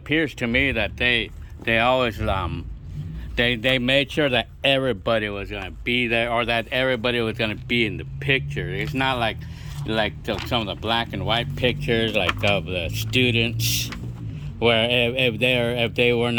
to me that they always, they made sure that everybody was going to be there, or that everybody was going to be in the picture. It's not like some of the black and white pictures, like of the students, where if they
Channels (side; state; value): both; identical; correlation 1.00